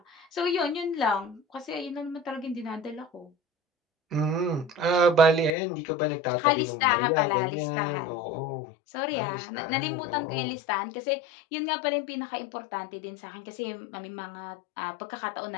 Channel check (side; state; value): right; drops out; at 5.6 s